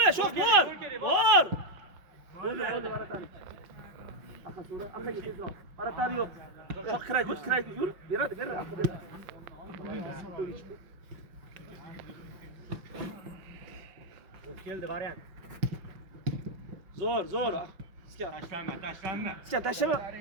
Shoh bor. Aqaga tezroq. Aratari yo'q. Shoh kiraydi. Yur. Beradi. Aqa beradi. Keldi variant. Zo'r. Iska. Tashlanma. Iska tashlama.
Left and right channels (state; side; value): late; left; 5.8 ms